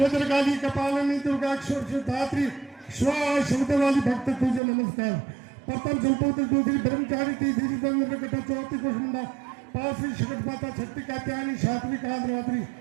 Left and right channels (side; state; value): left; drops out; at 4.6 s